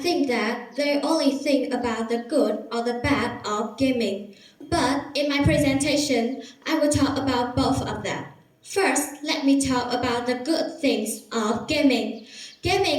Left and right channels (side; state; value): both; identical; correlation 1.00